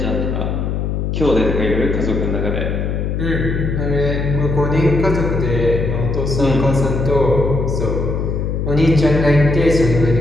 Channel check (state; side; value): noise; left; hum, 1 dB below the sound